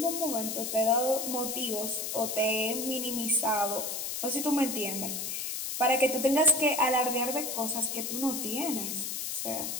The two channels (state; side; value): noise; left; hiss, 3 dB below the sound